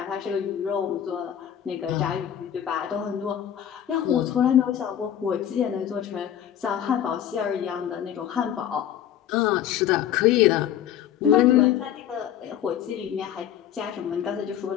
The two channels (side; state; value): right; quieter; 10.3 dB